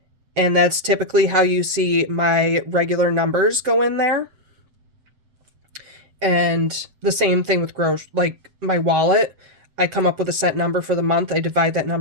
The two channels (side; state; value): left; late; 7.8 ms